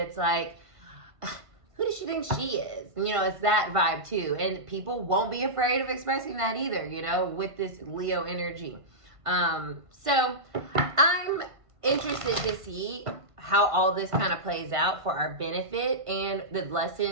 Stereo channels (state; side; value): late; left; 1.5 ms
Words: like, who does she think she is? You know, it's that vibe too. And people won't be afraid of expressing that either, you know, with this Leo energy. So I'm interested to see how all this kind of plays out for our benefit and the